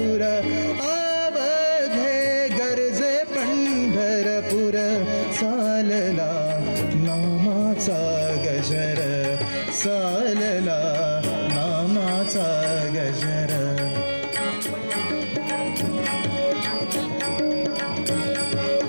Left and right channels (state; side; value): inverted; both; correlation -1.00